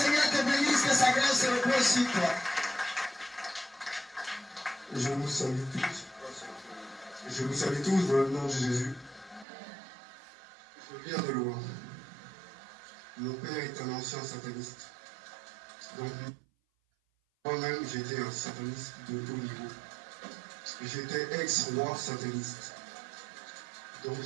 te bénisse, que sa grâce se repose sur toi. Je vous salue tous. Je vous salue tous dans le nom de Jésus. Je viens de loin. Mon père est un ancien sataniste. Donc, moi-même, j'étais un sataniste de haut niveau. J'étais ex-roi sataniste. Donc,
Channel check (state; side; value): drops out; left; at 9.5 s